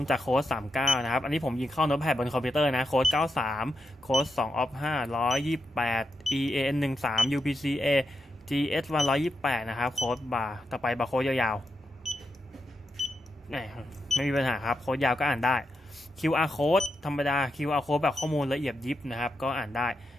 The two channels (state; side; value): normal; both; correlation 0.85